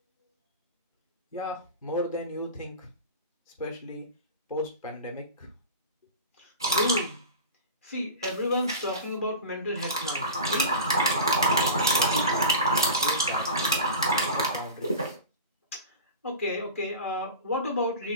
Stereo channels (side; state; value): both; inverted; correlation -0.32